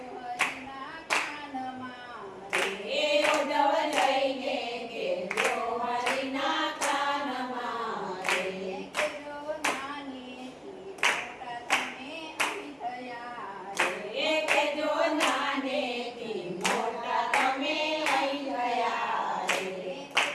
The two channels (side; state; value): both; identical; correlation 1.00